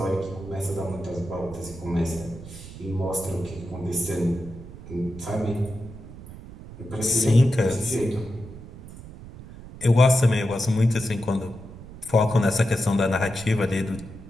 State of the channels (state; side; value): noise; right; rumble, 15 dB below the sound